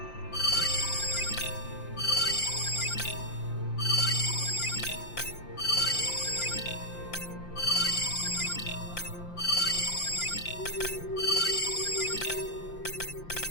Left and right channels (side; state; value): right; late; 5.8 ms